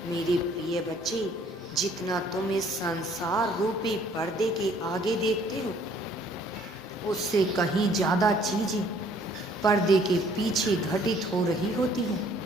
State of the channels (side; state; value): both; normal; correlation 0.60